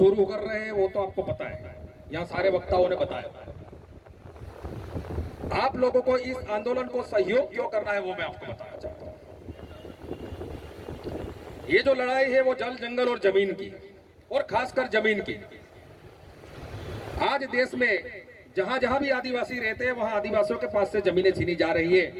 कर रहे हैं वो तो आपको पता है, यहाँ सारे वक्ताओं ने बताया। आप लोगों को इस आंदोलन को सहयोग क्यों करना है वो मैं आपको बताना चाहता हूं। ये जो लड़ाई है वो जल, जंगल और जमीन की, और खासकर जमीन की। आज देश में जहां जहां भी आदिवासी रहते हैं वहां आदिवासियों के पास से जमीनें छीनी जा रही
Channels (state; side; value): identical; both; correlation 1.00